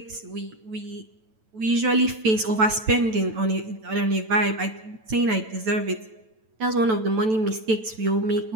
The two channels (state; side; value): late; left; 9.1 ms